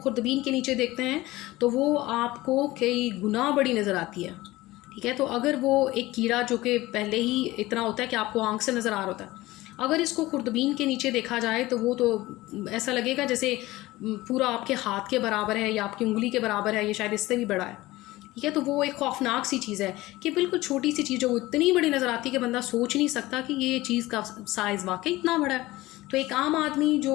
के नीचे देखते हैं तो वो आपको कई गुना बड़ी नज़र आती है। ठीक है, तो अगर वो एक कीड़ा जो कि पहले ही इतना होता है कि आपको आंख से नज़र आ रहा होता है, अगर इसको खुर्दबीन के नीचे देखा जाए तो वो तो ऐसा लगेगा जैसे पूरा आपके हाथ के बराबर है या आपकी उंगली के बराबर है, ये शायद इससे भी बड़ा है। ठीक है, तो वो एक खौफनाक सी चीज़ है कि बिल्कुल छोटी सी चीज़ जो इतनी बड़ी नज़र आती है कि बंदा सोच नहीं सकता कि ये चीज़ का साइज़ वाकई इतना बड़ा है। तो एक आम आदमी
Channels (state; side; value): quieter; right; 18.5 dB